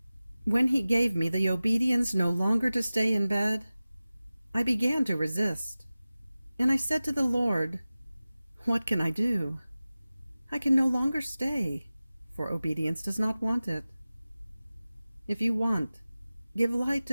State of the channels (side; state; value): both; inverted; correlation -0.96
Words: When He gave me the obedience no longer to stay in bed, I began to resist, and I said to the Lord, "What can I do? I can no longer stay, for obedience does not want it. If you want, give light